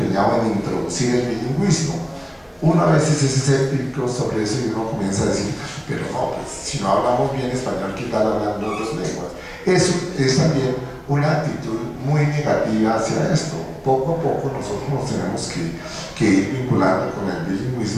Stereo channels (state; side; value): identical; both; correlation 1.00